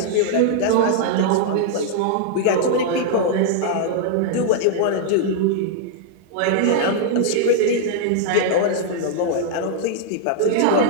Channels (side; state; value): both; different; correlation -0.01